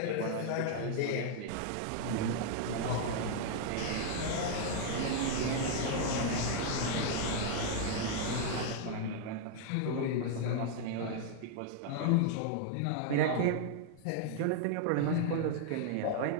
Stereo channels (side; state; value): both; different; correlation 0.00